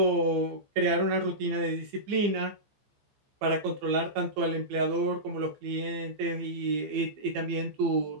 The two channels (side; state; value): left; late; 15 ms